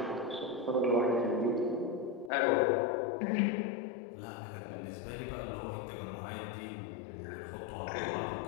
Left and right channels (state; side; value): drops out; right; at 2.3 s